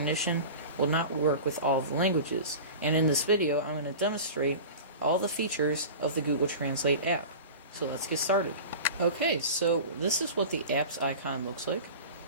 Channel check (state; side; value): inverted; both; correlation -0.34